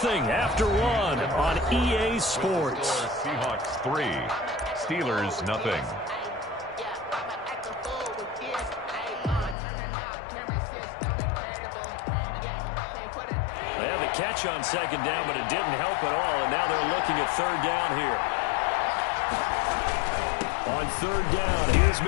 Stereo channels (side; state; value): right; drops out; at 9.6 s